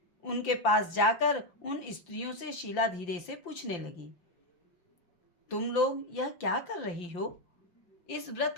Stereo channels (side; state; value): right; late; 5.8 ms